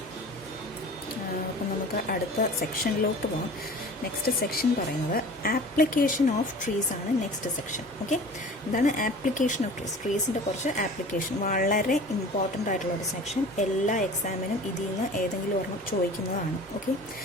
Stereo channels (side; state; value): both; normal; correlation 0.41